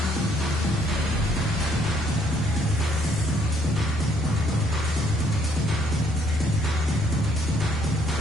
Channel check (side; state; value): both; normal; correlation 0.67